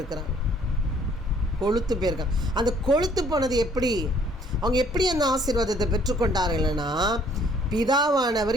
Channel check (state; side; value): normal; both; correlation 0.60